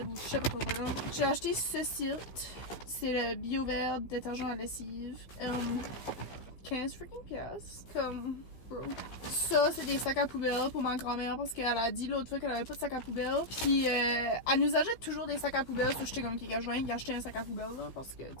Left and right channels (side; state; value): right; late; 15 ms